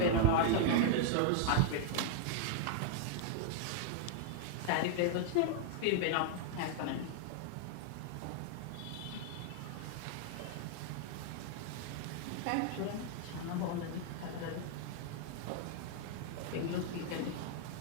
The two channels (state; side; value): different; both; correlation -0.01